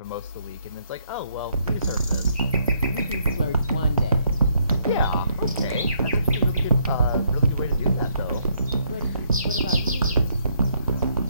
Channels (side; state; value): both; inverted; correlation -0.72